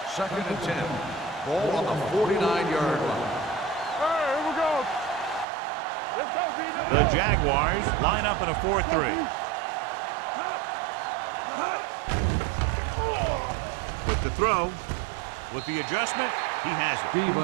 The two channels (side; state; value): left; drops out; at 5.5 s